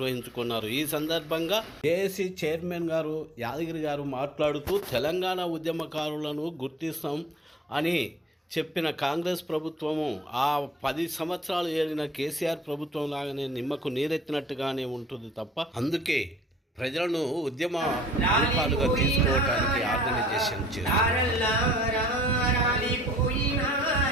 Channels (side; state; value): both; normal; correlation 0.56